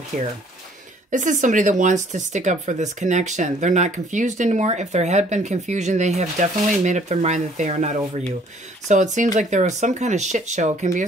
here. This is somebody that wants to stick up for this connection. They're not confused anymore. If there had been confusion, they have definitely made up their mind that they are not over you. So it seems like there was some kind of shit show. It can be a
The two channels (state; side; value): normal; both; correlation 0.59